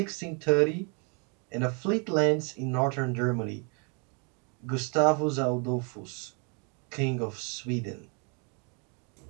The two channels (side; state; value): left; quieter; 35.5 dB